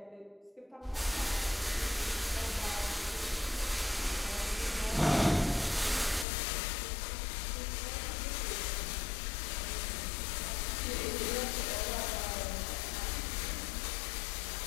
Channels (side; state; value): right; drops out; at 6.2 s